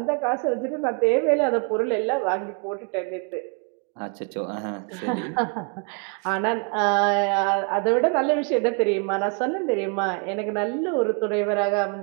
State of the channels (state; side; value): quieter; left; 36.8 dB